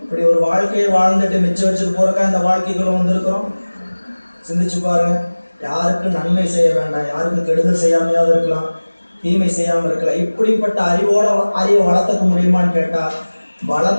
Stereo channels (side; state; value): both; inverted; correlation -1.00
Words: இப்படி ஒரு வாழ்க்கையை வாழ்ந்துட்டு மிச்சம் வச்சுட்டு போறக்கா இந்த வாழ்க்கைக்குள்ள வந்திருக்கிறோம். சிந்திச்சு பாருங்க. யாருக்கும் நன்மை செய்ய வேண்டாம், யாருக்கும் கெடுதல் செய்யாமையாவது இருக்கலாம், தீமை செய்யாமல் இருக்கலாம். இப்படிப்பட்ட அறிவை வளர்த்துக்க முடியுமான்னு கேட்டா,